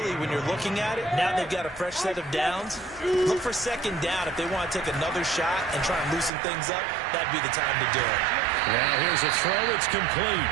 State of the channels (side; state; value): left; drops out; at 6.3 s